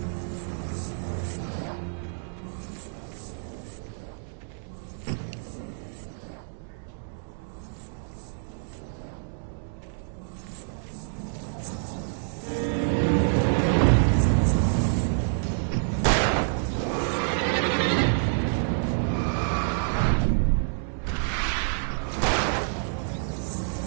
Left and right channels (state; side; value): silent; left; 60 dB below the other